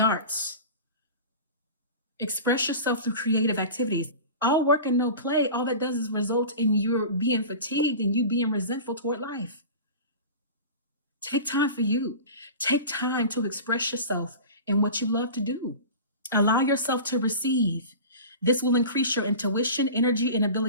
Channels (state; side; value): inverted; both; correlation -0.34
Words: arts. Express yourself through creative activities. All work and no play, all that does is result in you being fatigued and you being resentful toward life. Take time for you. Take time to express yourself in what you love to do. Allow yourself to receive. This will increase your intuition, energy, and